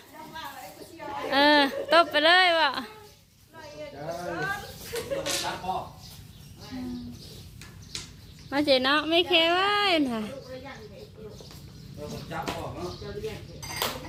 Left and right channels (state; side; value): identical; both; correlation 1.00